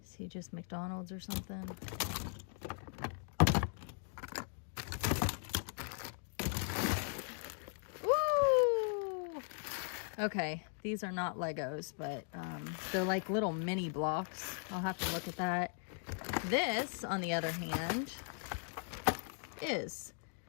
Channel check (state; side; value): silent; right; 52 dB below the other